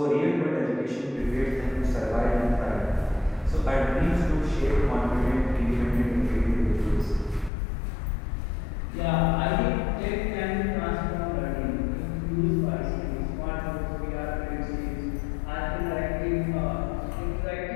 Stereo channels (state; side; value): drops out; right; at 7.5 s